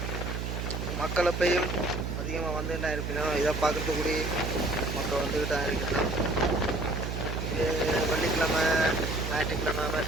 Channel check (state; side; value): noise; right; hum, 3 dB below the sound